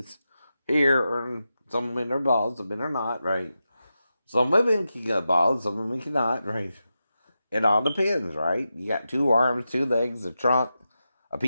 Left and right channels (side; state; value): both; inverted; correlation -0.90